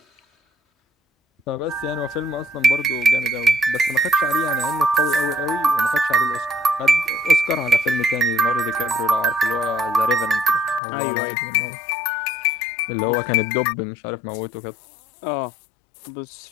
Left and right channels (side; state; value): right; drops out; at 10.8 s